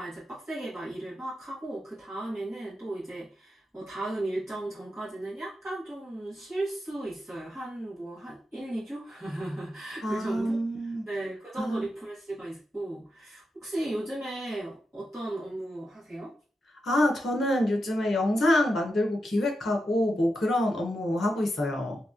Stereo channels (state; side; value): normal; both; correlation 0.87